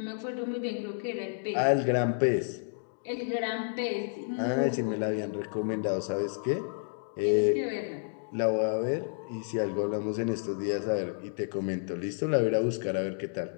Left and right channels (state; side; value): silent; right; digital silence